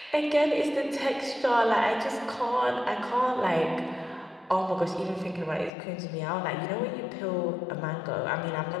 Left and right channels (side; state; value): right; drops out; at 5.7 s